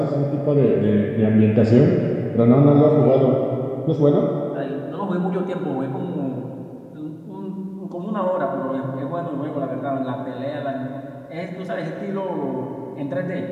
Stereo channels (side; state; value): both; identical; correlation 1.00